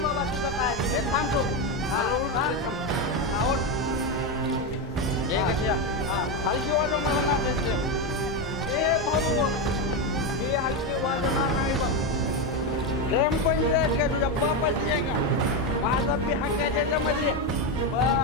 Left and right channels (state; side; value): normal; both; correlation 0.10